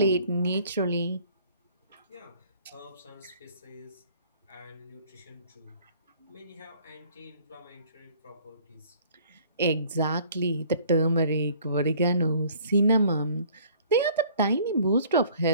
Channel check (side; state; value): both; inverted; correlation -0.55